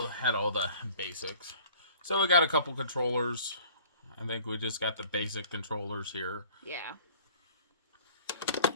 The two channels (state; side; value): inverted; both; correlation -0.51